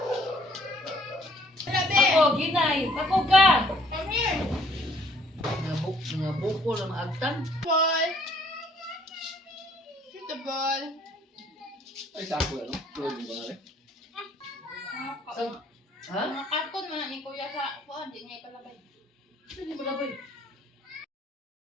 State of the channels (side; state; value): both; normal; correlation 0.62